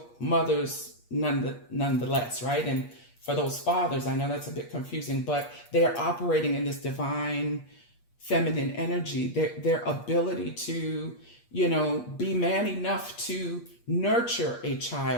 mothers nonetheless, right? And for those fathers, I know that's a bit confusing, but they are operating in this divine feminine energy, their ability to, be man enough to nurture a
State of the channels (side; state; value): right; late; 8.4 ms